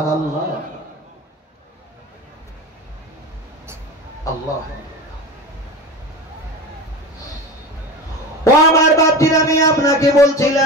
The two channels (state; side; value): normal; both; correlation 0.29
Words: আল্লাহ ও আমার বাপজির, আমি আপনাকে